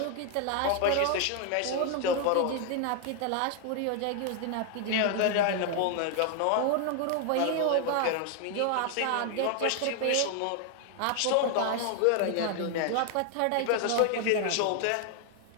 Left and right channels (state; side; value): different; both; correlation 0.00